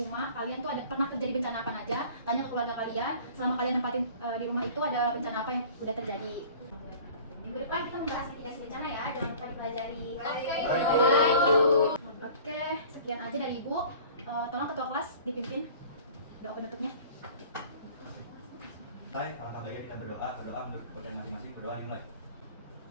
rumah. Kalian tuh ada pernah terjadi bencana apa aja? Tanya ke keluarga kalian. Selama kalian nempatin di rumah itu ada bencana apa yang udah terjadi? Minggu depan kita membahas mitigasi bencana ya, jangan lupa dipelajari. Oke, sekian aja dari Ibu. Tolong ketua kelas dipimpin doa penutupnya. Hai, alangkah baiknya kita berdoa menurut kepercayaan masing-masing. Berdoa dimulai.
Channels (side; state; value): both; inverted; correlation -0.46